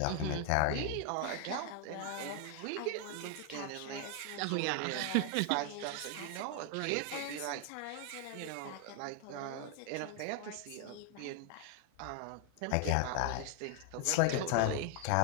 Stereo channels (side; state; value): both; different; correlation 0.00